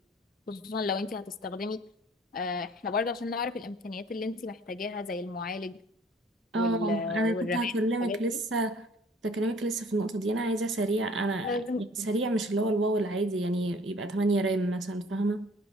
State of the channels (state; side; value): normal; both; correlation 0.52